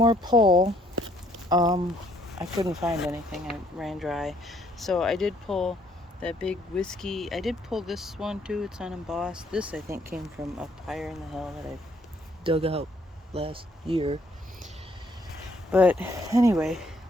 pull, I couldn't find anything. I ran dry. So I did pull that big whiskey. I did pull this one too. It's unembossed. This I think came from up higher in the hill that I dug out last year. But anyway,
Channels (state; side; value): normal; both; correlation 0.65